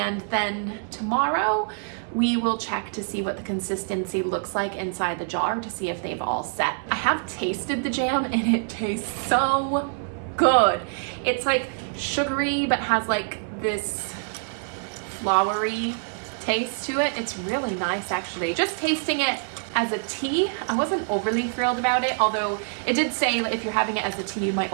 then tomorrow we will check to see what the consistency looks like inside the jar to see if they've all set. I have tasted the jam and it tastes so good. It's like sugary but has like this flowery taste to it. It's really nice actually. Just tasting it as a tea, I wasn't overly thrilled about it, although it did say if you're having it as a tea you might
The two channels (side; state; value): left; silent; 61 dB below the other